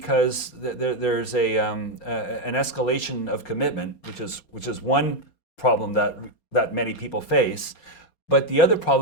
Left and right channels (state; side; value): late; right; 4.3 ms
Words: there's an escalation of commitment, which is one problem that many people face. But the other